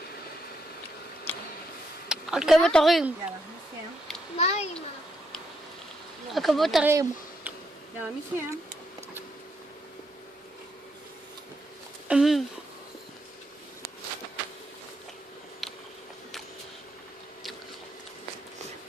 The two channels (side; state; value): both; normal; correlation 0.78